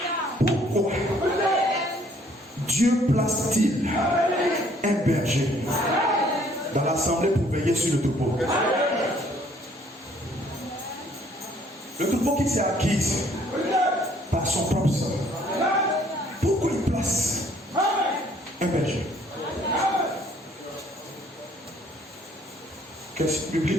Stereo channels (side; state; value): both; normal; correlation 0.61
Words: pourquoi Dieu place-t-il un berger dans l'assemblée pour veiller sur le troupeau? Le troupeau qui s'est acquis par son propre sang. Pourquoi il place un berger? Question